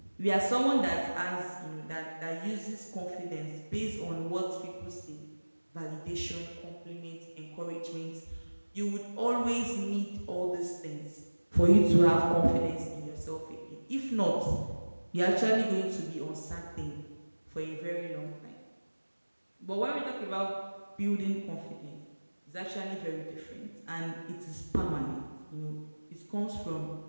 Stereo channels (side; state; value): both; inverted; correlation -1.00